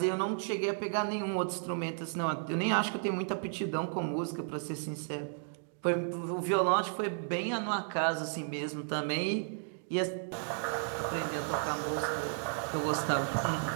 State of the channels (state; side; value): silent; left; digital silence